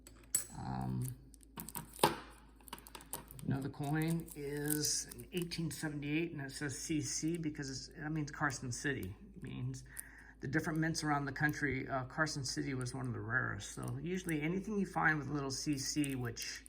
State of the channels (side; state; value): both; identical; correlation 1.00